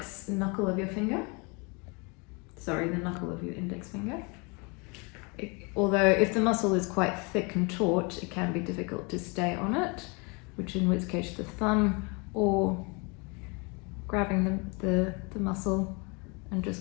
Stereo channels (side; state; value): right; quieter; 30.8 dB